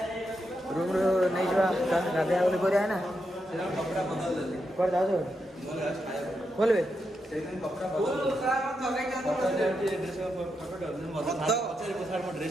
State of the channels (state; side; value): normal; both; correlation 0.84